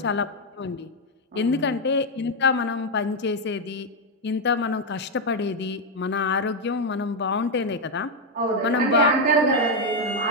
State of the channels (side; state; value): both; normal; correlation 0.02